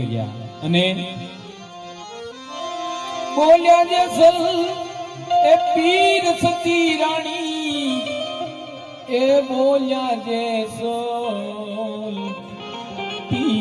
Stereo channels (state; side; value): identical; both; correlation 1.00